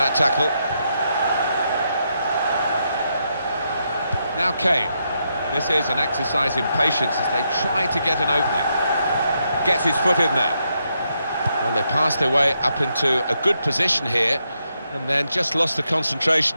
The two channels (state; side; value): inverted; both; correlation -0.80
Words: tackle. Now Kane. This is an exercise in patience as they try to get an opening. Gets his foot in there. Well, they passed their way up into a good position here and then just lost the